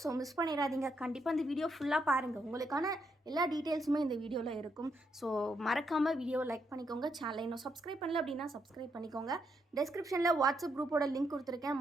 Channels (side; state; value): both; normal; correlation 0.78